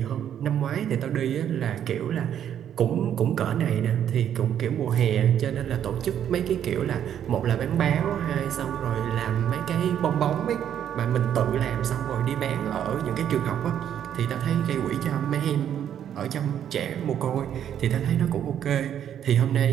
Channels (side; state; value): left; quieter; 9.7 dB